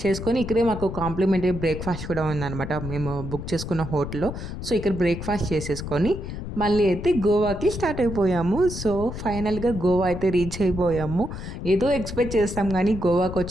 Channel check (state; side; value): noise; left; rumble, 7 dB below the sound